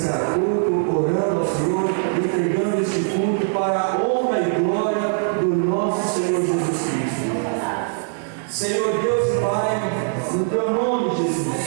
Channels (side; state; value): left; silent; digital silence